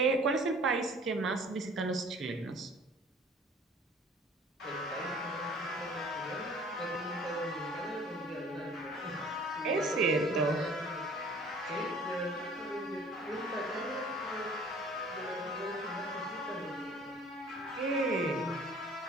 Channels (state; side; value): normal; both; correlation 0.50